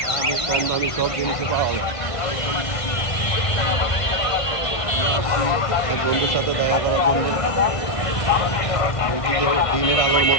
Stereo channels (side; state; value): right; late; 1.5 ms